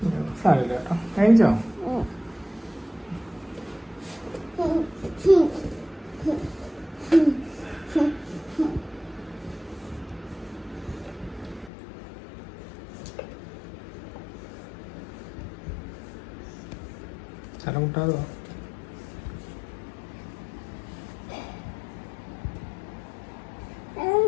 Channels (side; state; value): right; drops out; at 11.7 s